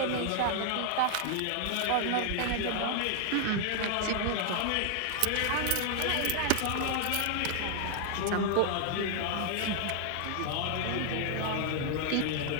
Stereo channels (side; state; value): both; different; correlation 0.00